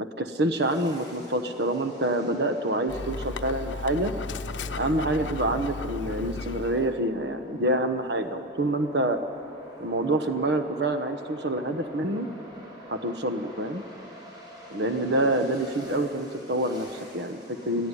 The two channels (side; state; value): both; normal; correlation 0.14